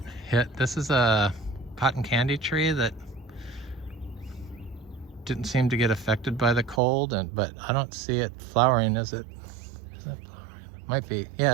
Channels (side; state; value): left; drops out; at 6.8 s